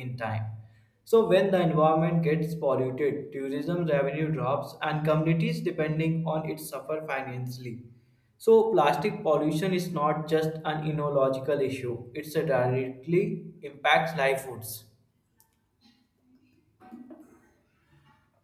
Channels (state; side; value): identical; both; correlation 1.00